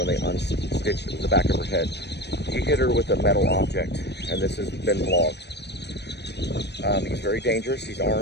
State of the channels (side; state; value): right; late; 0.49 ms